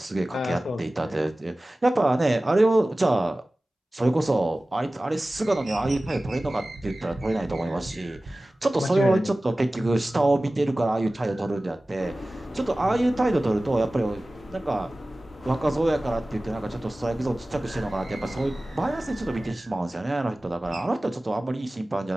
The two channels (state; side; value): normal; both; correlation 0.97